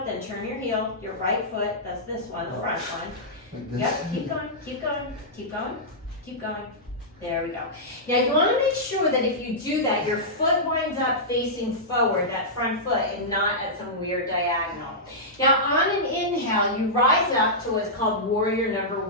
then turn your heel, your right foot, that's this one, the front one. Like Yep, keep going, keep going, keep going. Keep going. There we go. Now you want to make sure that if you do that, your foot winds up facing forward, that front foot, and not at some weird diagonal. Now on an inhale, you rise up to what's called warrior number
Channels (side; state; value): both; normal; correlation -0.12